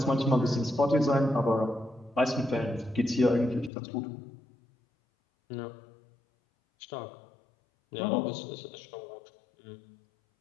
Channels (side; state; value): right; drops out; at 3.7 s